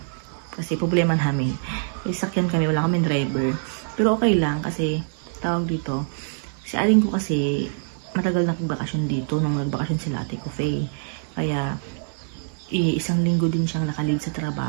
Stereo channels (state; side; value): silent; left; digital silence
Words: Kasi problema namin. Sakyan kami, wala kaming driver. Pero okay lang kasi tawag dito, si aling ko kasi matagal na nagbakasyon dito nung nagbakasyon sila Ate Kufay. Kaya, isang linggo din siyang nakalid sa